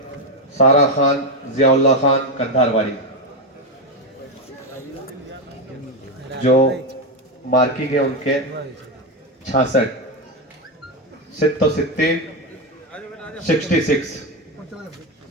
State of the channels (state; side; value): normal; both; correlation 0.09